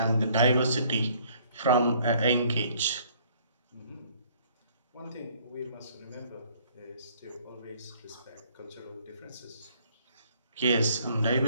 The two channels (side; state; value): both; inverted; correlation -0.61